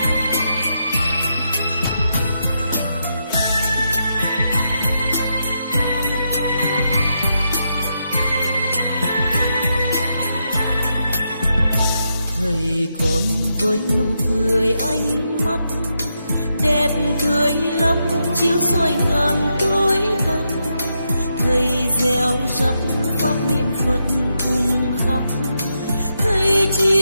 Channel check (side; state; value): both; inverted; correlation -0.83